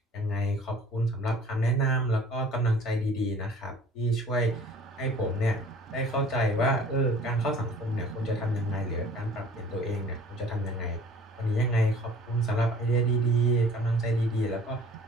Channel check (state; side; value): normal; both; correlation 0.50